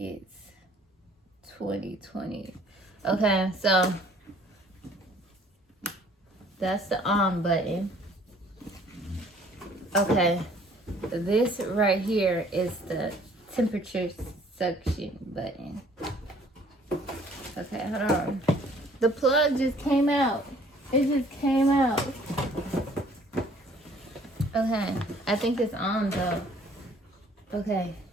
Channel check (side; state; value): both; normal; correlation 0.58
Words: 2020. Okay, so that's the on button. Okay, this right here is the temperature suction button. Okay, hold on. The plug just came out. It just came out. Okay, I think it's on though. Okay.